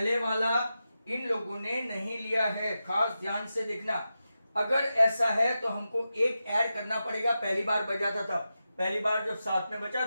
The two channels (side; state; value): both; inverted; correlation -0.91